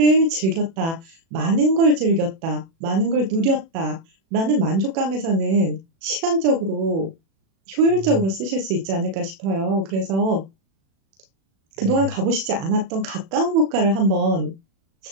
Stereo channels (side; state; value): left; late; 36 ms